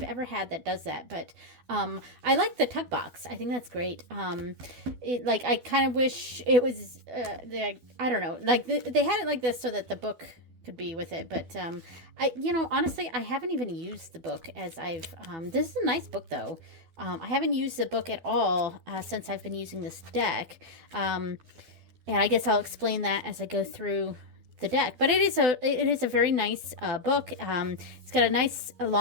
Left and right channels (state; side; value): late; left; 12 ms